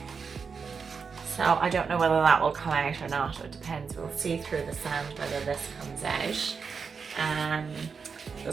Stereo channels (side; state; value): left; quieter; 5.6 dB